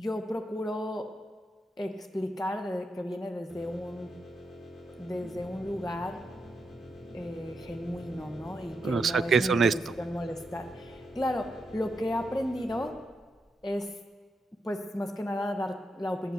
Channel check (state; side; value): normal; both; correlation 0.84